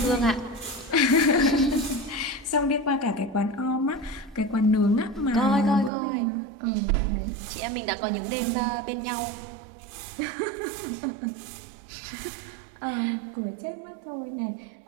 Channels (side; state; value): left; drops out; at 5.9 s